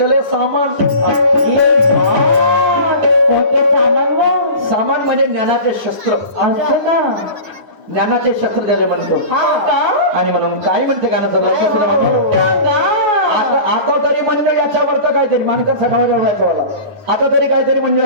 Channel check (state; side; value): late; left; 9.4 ms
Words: है सामान। सामान म्हणजे ज्ञानाचे शस्त्र, ज्ञानाचे शस्त्र ज्याला म्हणतो। आणि म्हणून काय म्हणते गाणं जर लक्ष सुद्धा म्हणतो, आता तरी म्हणलं याच्यावर तर काहीतरी मानकर सठावा याच्यावाला, आता तरी काहीतरी म्हणलं